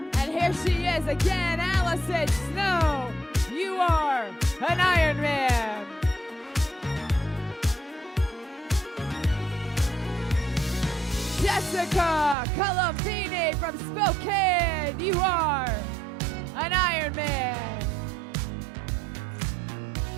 And here she is again, Allison Snow. You are an Ironman. Jessica Colombini from Spokane. You are an Ironman.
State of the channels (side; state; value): left; drops out; at 12.4 s